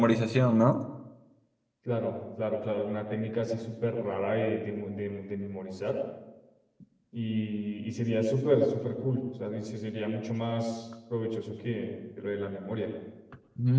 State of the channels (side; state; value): both; identical; correlation 1.00